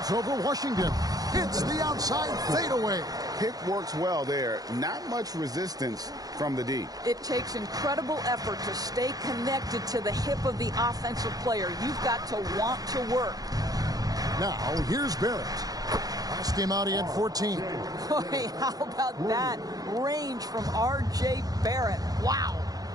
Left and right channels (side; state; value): left; late; 0.18 ms